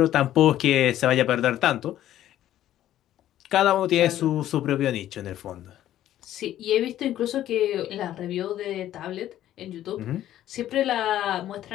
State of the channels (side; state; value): right; quieter; 12.6 dB